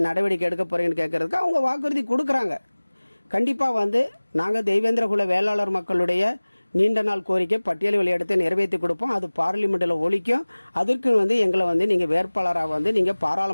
நடவடிக்கை எடுக்க போகிறீங்கன்னு கேட்குறதுக்கு அவங்க வாக்குறுதி கொடுக்குறாங்க. கண்டிப்பாக வந்து நாங்கள் தெய்வேந்திரகுல வேளாளர் மக்களுடைய நீண்ட நாள் கோரிக்கை பட்டியல் வெளியேற்றத்தை நிறைவேற்றி கொடுப்போம், அது பார்லிமெண்ட்டில் ஒழிக்கும், அதற்கு வந்து எங்களை வந்து நீங்கள் வேட்பாளராக வந்து நீங்கள்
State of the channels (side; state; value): both; inverted; correlation -1.00